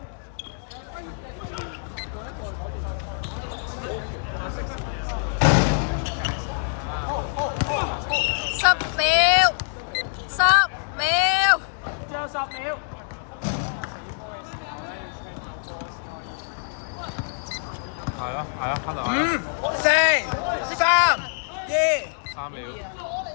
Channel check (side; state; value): right; silent; digital silence